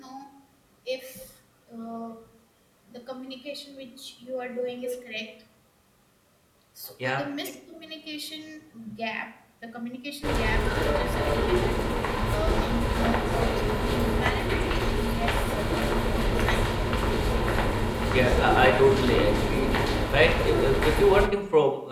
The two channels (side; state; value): both; identical; correlation 1.00